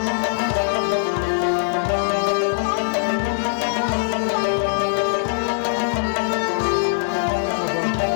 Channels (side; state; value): right; silent; 65 dB below the other